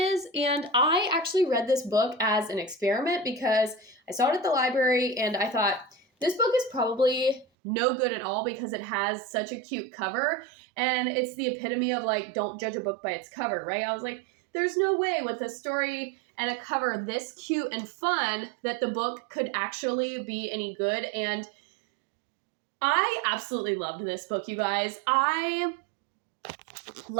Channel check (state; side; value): drops out; left; at 7.5 s